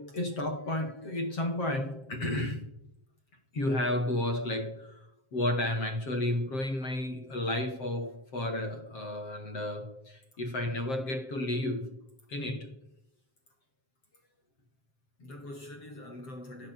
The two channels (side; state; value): right; late; 7.6 ms